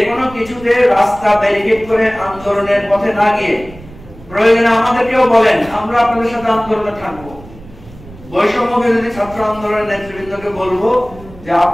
কোনো কিছুতে রাস্তা ব্যারিকেড করে আন্দোলনের পথে না গিয়ে প্রয়োজনে আমাদেরকেও বলেন, আমরা আপনাদের সাথে আন্দোলনে থাকবো। বৈষম্য বিরোধী ছাত্র আন্দোলনের নেতৃবৃন্দকে বলবো যে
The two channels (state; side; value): noise; right; rumble, 19 dB below the sound